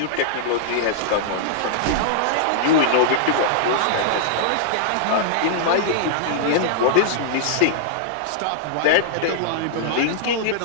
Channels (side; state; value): both; different; correlation -0.02